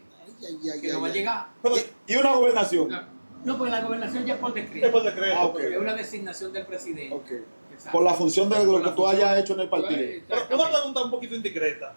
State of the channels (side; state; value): both; inverted; correlation -1.00